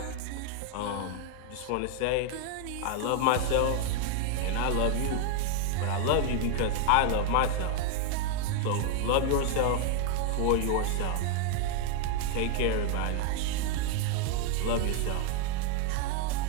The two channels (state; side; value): different; both; correlation 0.00